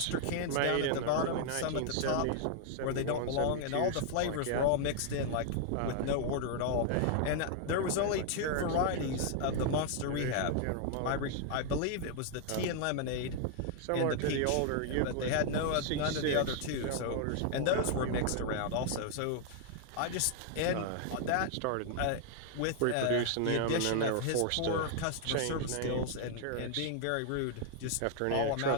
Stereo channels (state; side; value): different; both; correlation 0.00